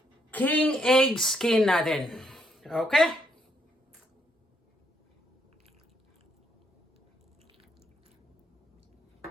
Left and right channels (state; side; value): normal; both; correlation 0.74